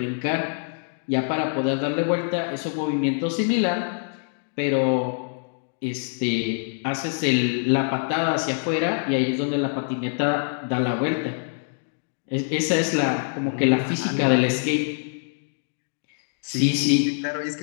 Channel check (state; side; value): silent; right; digital silence